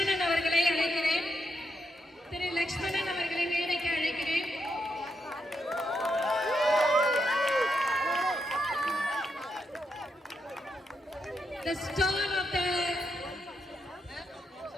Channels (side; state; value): both; normal; correlation 0.82